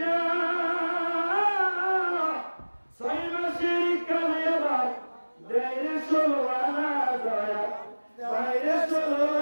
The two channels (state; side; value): inverted; both; correlation -1.00